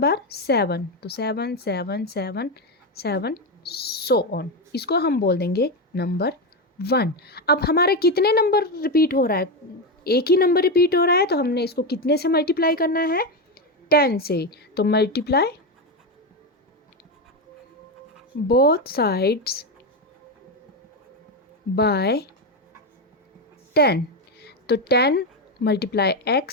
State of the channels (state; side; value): normal; both; correlation 0.11